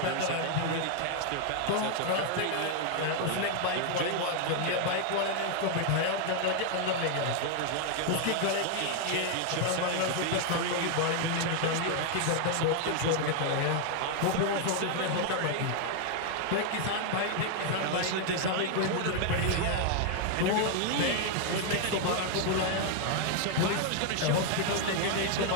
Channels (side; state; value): both; different; correlation 0.00